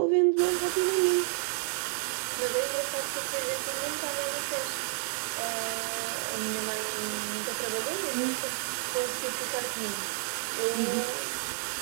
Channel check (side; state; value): left; silent; 58 dB below the other